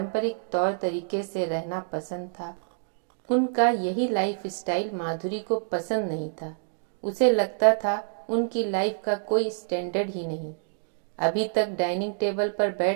तौर तरीके से रहना पसंद था। उनका यही लाइफ स्टाइल माधुरी को पसंद नहीं था। उसे लगता था उनकी लाइफ का कोई स्टैंडर्ड ही नहीं। अभी तक डाइनिंग टेबल पर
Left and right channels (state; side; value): silent; left; digital silence